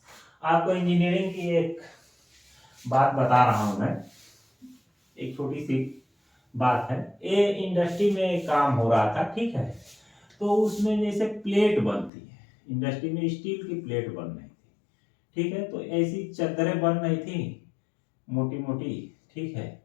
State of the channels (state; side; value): drops out; right; at 12.1 s